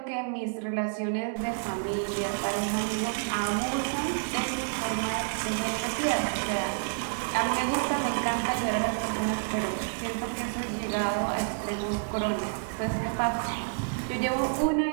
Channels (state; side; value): silent; left; digital silence